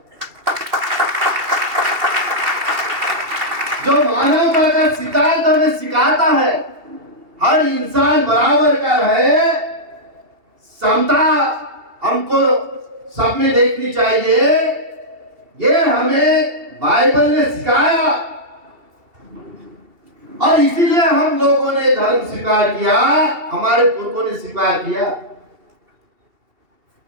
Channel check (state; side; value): late; left; 2.7 ms